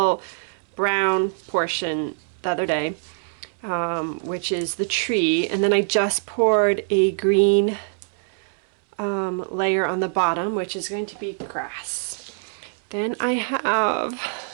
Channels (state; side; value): silent; left; 63 dB below the other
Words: brown portion the other day, which is the tree, and then I just poured a green layer on the bottom, which is going to be grass. Then I